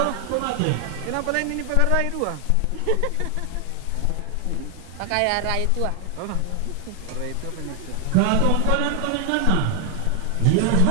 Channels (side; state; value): both; different; correlation 0.00